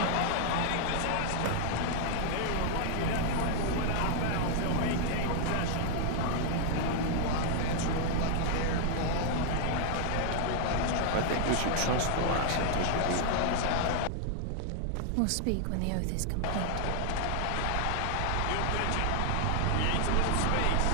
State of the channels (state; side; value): different; both; correlation 0.00